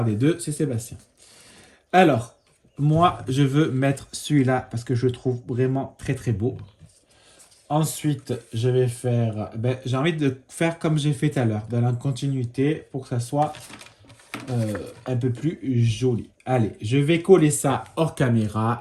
des deux, c'est Sébastien. Alors, moi, je veux mettre celui-là parce que je le trouve vraiment très beau. Ensuite, je vais faire... j'ai envie de faire comme j'ai fait tout à l'heure, dans la continuité, pour que ça soit un peu plus joli. Allez, je vais coller ça hors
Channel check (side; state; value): both; identical; correlation 1.00